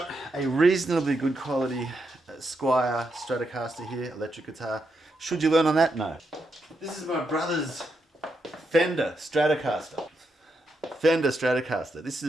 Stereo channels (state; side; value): normal; both; correlation 0.83